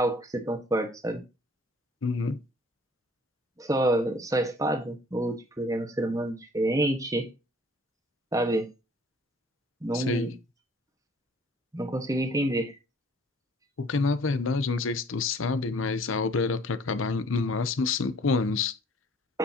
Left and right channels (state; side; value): normal; both; correlation 0.55